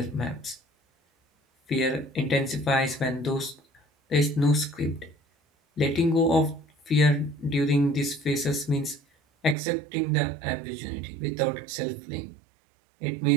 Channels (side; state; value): left; drops out; at 9.6 s